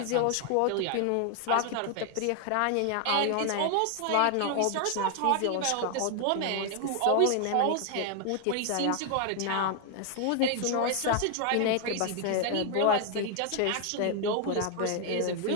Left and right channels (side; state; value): both; different; correlation 0.00